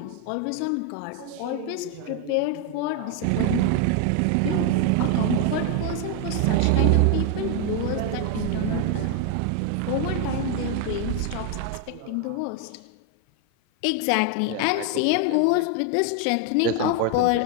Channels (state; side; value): different; both; correlation 0.01